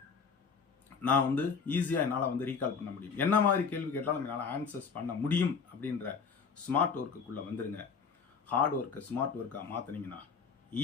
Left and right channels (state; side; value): quieter; right; 5.7 dB